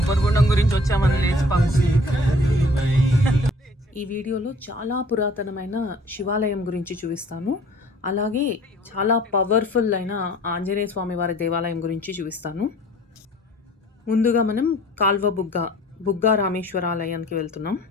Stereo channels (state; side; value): normal; both; correlation 0.52